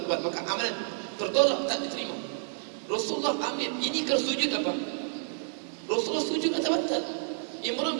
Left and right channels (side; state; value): left; silent; digital silence